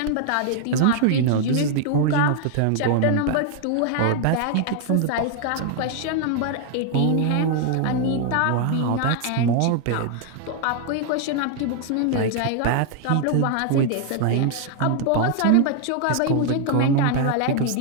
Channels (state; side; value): different; both; correlation 0.00